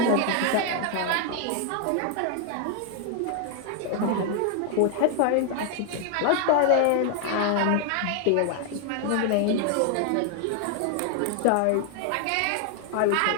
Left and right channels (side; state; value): both; different; correlation 0.00